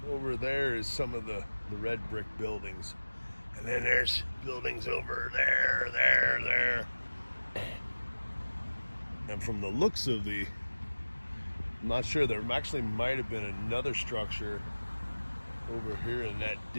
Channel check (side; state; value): both; inverted; correlation -1.00